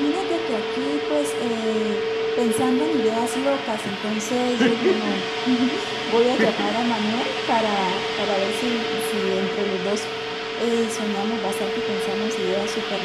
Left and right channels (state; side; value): identical; both; correlation 1.00